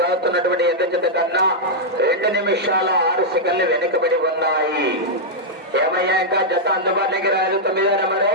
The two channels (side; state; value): both; normal; correlation -0.05